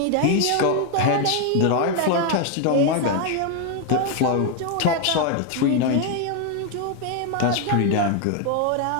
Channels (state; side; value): different; both; correlation 0.01